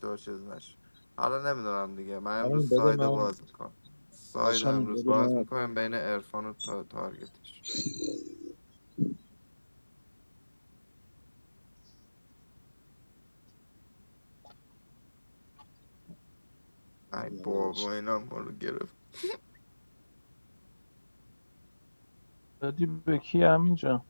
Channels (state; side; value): inverted; both; correlation -1.00